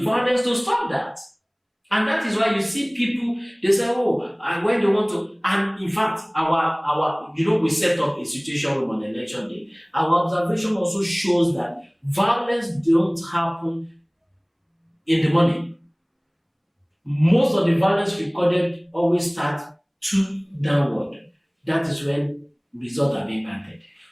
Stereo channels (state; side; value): identical; both; correlation 1.00